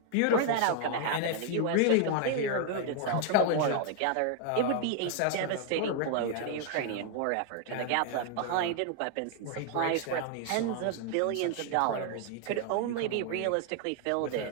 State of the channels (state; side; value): different; both; correlation 0.00